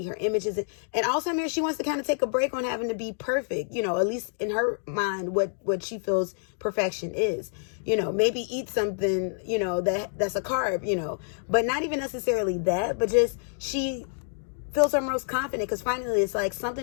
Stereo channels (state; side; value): silent; right; digital silence